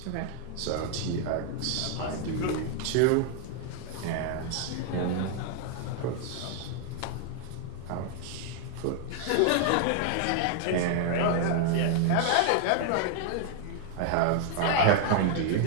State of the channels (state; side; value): different; both; correlation 0.00